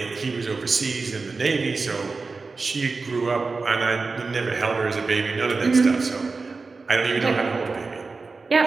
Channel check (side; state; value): left; quieter; 4.1 dB